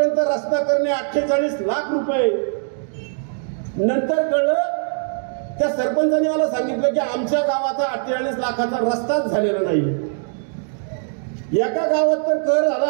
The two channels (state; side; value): silent; left; digital silence